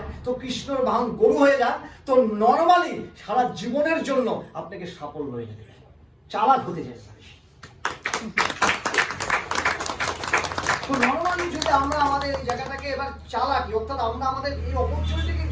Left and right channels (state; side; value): identical; both; correlation 1.00